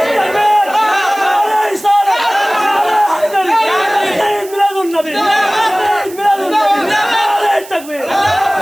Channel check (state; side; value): noise; right; hiss, 18 dB below the sound